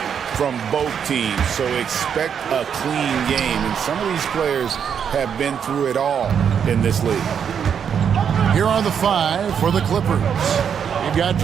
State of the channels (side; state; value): left; quieter; 7.7 dB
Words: from both teams, so expect a clean game. And some of these players have been through it all in this league. Here are the five for the Clippers. You've got